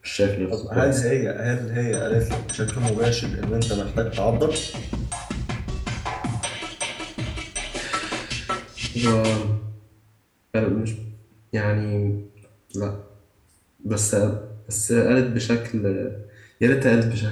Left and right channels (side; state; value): both; identical; correlation 1.00